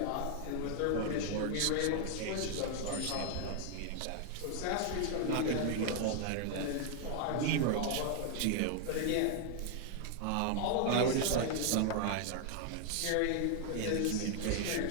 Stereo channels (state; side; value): different; both; correlation 0.00